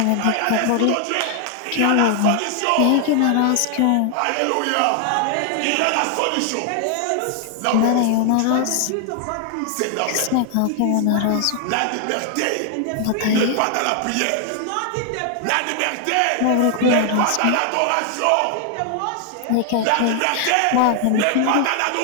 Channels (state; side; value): different; both; correlation 0.00